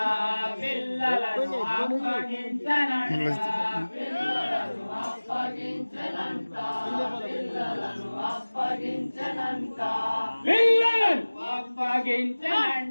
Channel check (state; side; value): inverted; both; correlation -1.00